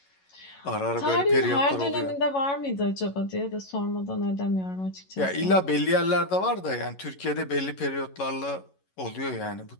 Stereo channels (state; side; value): late; right; 11 ms